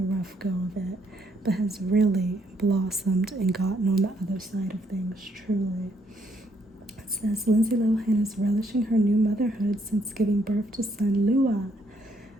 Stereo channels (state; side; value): normal; both; correlation 0.71